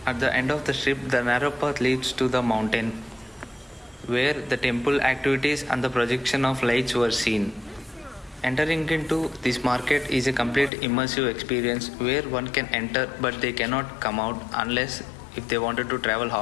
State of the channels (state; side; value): drops out; right; at 10.7 s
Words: At the end of the strip, the narrow path leads to the mountain, where the temple activities and the projection of lights were seen. Entering into this market is a complete immersive experience where one can enter but they cannot come out unless if they wanted to travel